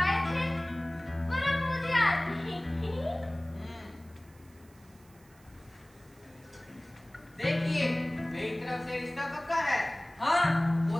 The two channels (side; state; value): right; noise; hiss, 29 dB below the sound